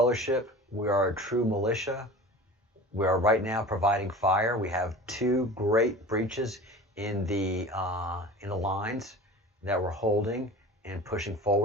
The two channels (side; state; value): both; normal; correlation 0.38